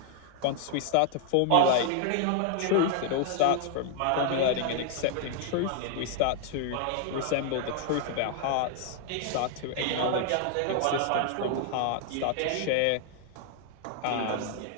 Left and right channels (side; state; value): both; different; correlation 0.00